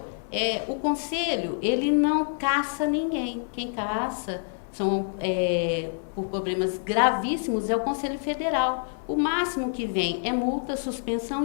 O conselho, ele não caça ninguém. Quem caça por problemas gravíssimos é o Conselho Federal. O máximo que vem é multa, suspensão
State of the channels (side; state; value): right; silent; 58 dB below the other